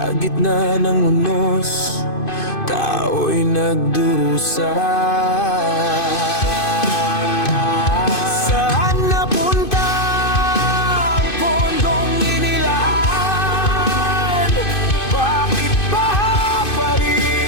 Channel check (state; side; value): late; right; 2.5 ms